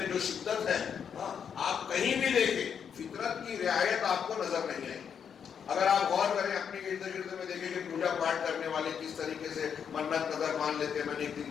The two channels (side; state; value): right; quieter; 7.5 dB